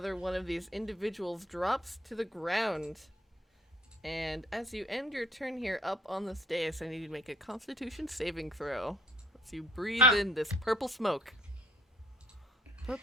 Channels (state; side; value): normal; both; correlation 0.61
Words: one of these individuals drops to the ground. And as you end your turn here up on this dais, I need you to make a Constitution saving throw. As you breathe in this purple smoke.